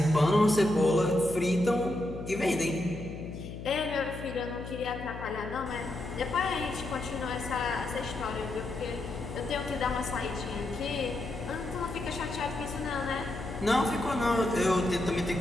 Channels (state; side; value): noise; left; hum, 9 dB below the sound